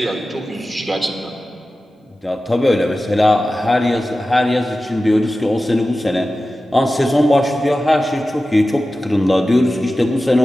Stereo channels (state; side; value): normal; both; correlation 0.94